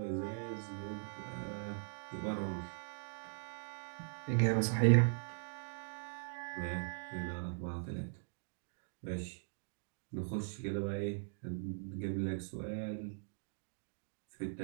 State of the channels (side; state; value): left; silent; digital silence